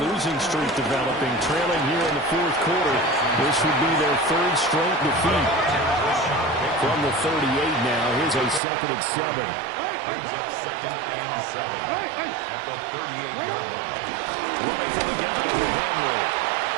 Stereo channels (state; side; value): drops out; left; at 8.6 s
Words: losing streak developing, trailing here in the fourth quarter. This would be their third straight defeat. From the 38 now, here's a 2nd and 7. Brings up 2nd and 7 at the 38-yard line. Running from the gun with Henry.